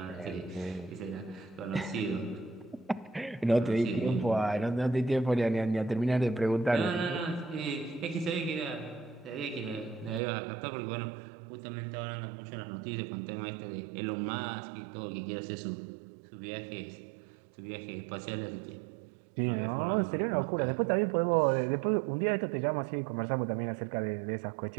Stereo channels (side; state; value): left; drops out; at 10.2 s